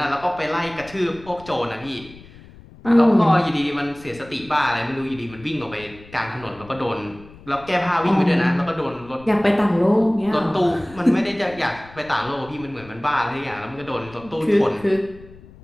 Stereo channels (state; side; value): noise; left; rumble, 21 dB below the sound